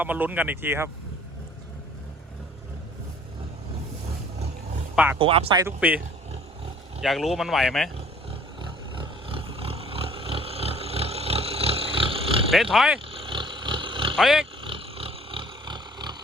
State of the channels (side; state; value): both; normal; correlation 0.54